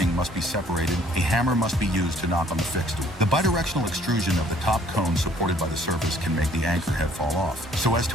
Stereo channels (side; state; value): both; normal; correlation 0.60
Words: must be separated, a hammer must be used to knock on the fixed tool. The bidirectional extrusion of the top cone supported by the surface can make the anchor head fall off, so as